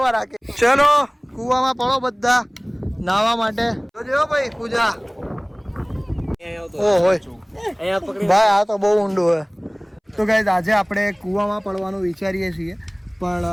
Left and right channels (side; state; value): both; identical; correlation 1.00